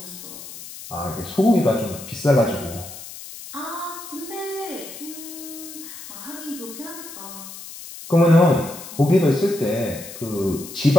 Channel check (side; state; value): left; noise; hiss, 13 dB below the sound